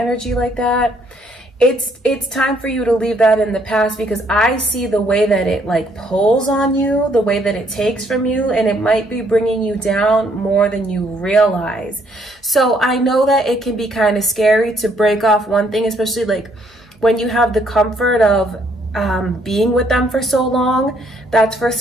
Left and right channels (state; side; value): normal; both; correlation 0.68